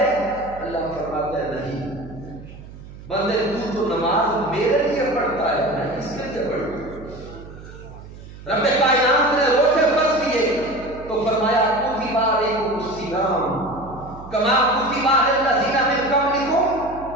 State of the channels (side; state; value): right; noise; hum, 16 dB below the sound